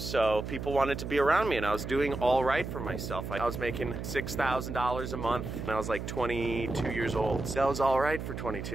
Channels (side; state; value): right; noise; hum, 6 dB below the sound